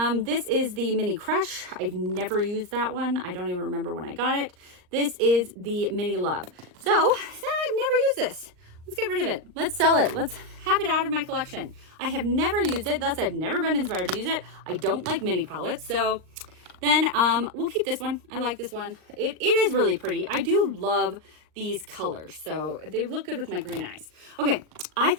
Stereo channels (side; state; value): left; late; 39 ms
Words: This is the Mini Crush. I've never used that one. I don't even remember when I got it. This is the Mini Love. So I've never used this. Let's get rid of it. Let's sell it. Let's have it out of my collection. I have never used it, thus I've never been inspired to use it. I don't like mini palettes, so then we'll keep this one. I like this one. It is really pretty. I do love these colors, so they look good with my green eyes. Okay, I